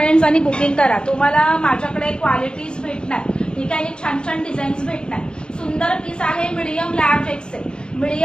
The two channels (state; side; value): late; right; 0.050 ms